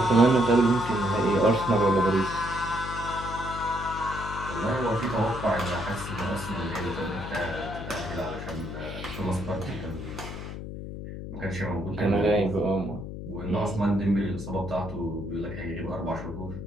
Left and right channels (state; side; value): noise; left; hum, 8 dB below the sound